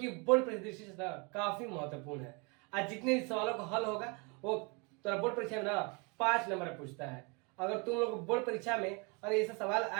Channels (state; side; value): quieter; left; 31.5 dB